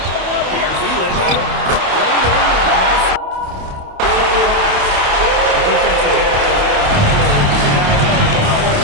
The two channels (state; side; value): late; left; 28 ms